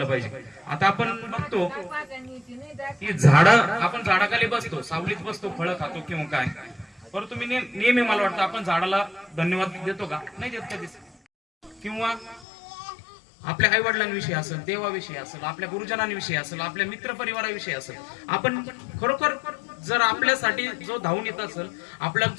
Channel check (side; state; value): right; drops out; at 12.5 s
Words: पाहिजे. आता आपण बघतो की आपण झाडाखाली बसतो, सावलीत बसतो, फळं खातो किंवा काय, परंतु मी नेहमी मला वाटतं आपण झाडाला धन्यवाद देतो का, नाही देत कधीच. किंवा आपल्या आई वडिलांविषयी असेल, देवाविषयी असेल, आपल्या गुरुजनांविषयी असेल, आपल्या मित्र परिवाराविषयी असेल, आपण खरोखर जर आपल्यासाठी जो धावून येत असेल, आपल्याला